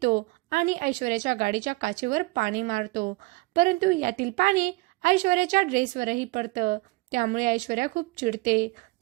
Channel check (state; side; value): quieter; left; 23.8 dB